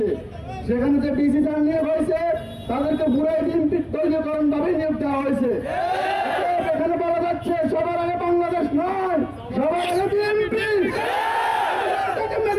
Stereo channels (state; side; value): identical; both; correlation 1.00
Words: সেখানে যে ডিসি যারা নিয়োগ হয়েছে তাদেরকে পুরাই বিএনপির দলীয়করণ ভাবে নিয়োগ দেওয়া হয়েছে। এখানে বলা যাচ্ছে সবার আগে বাংলাদেশ নয়, সবার আগে বিএনপি।